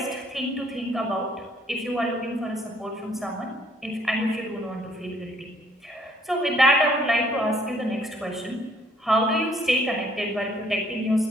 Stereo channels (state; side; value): normal; both; correlation 0.63